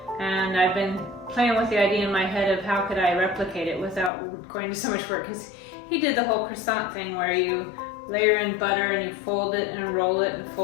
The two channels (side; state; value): right; drops out; at 4.1 s